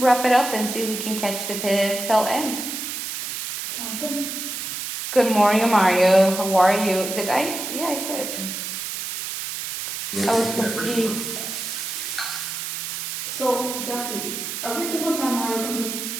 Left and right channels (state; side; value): noise; right; hiss, 5 dB below the sound